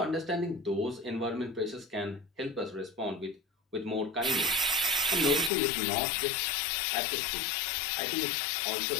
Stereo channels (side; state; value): right; drops out; at 5.5 s